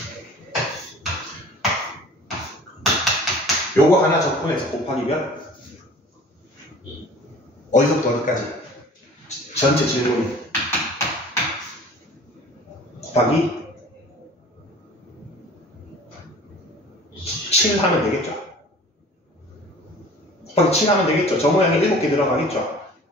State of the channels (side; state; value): both; normal; correlation 0.46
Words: 요거 하나 접근해서 곱하기 몇? 어디서부터 어디까지? 전체 질문이 곱하기 7 하면 되겠죠? 곱하기 7 하면 되겠죠? 저 모양이 7개 들어가겠죠?